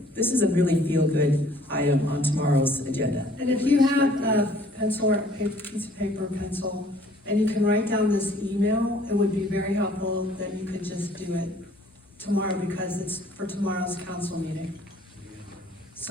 This is a really feel-good item on tomorrow's agenda. And if you have a pencil or a piece of paper or pencil, and you can write down this email, it would be very helpful that you could just do it tomorrow because it's for tomorrow's council meeting.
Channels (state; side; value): normal; both; correlation 0.57